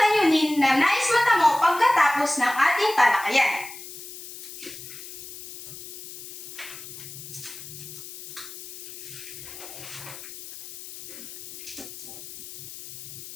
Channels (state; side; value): noise; left; hiss, 13 dB below the sound